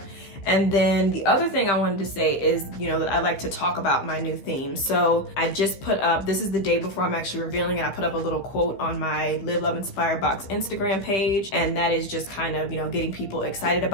And then the other thing I wanted to say is, you know, that I like to talk about my new theme. So I just put up, this is the day before I'm actually revealing it, I put up a little quote on my Live, Love, Inspire Box Instagram page. And that is just kind of, you know, getting people excited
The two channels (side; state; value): right; late; 15 ms